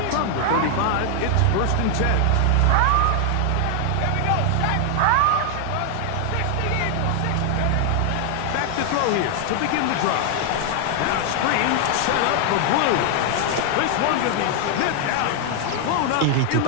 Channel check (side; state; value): both; different; correlation 0.00